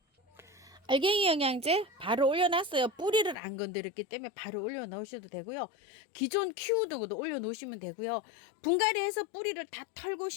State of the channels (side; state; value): right; drops out; at 3.4 s